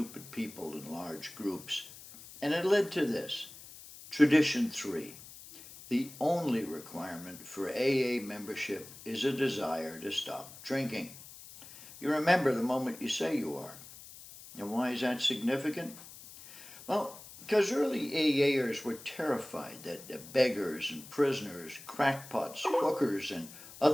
people in large groups. And it led to this. Tradition 3. The only requirement for AA membership is a desire to stop drinking. You remember the moment you say you are. And why is that significant? Well, because early AAers were terrified that beggars and prisoners, crackpots, hookers, and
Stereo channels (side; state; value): left; noise; hiss, 17 dB below the sound